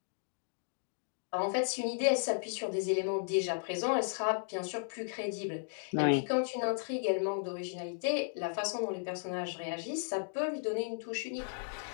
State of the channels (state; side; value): silent; right; digital silence